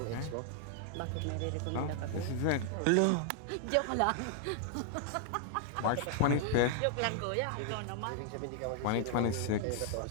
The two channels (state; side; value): different; both; correlation 0.00